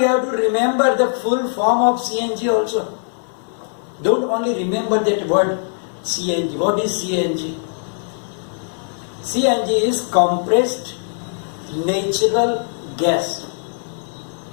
have to remember the full form of CNG also. Don't only remember that word CNG. What is CNG? CNG is compressed natural gas.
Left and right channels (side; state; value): right; silent; 63 dB below the other